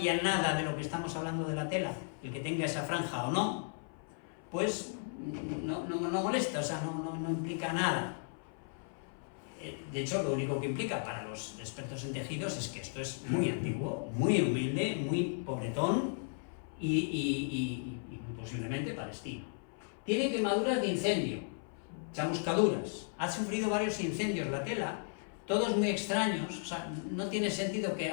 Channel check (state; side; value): silent; right; 54 dB below the other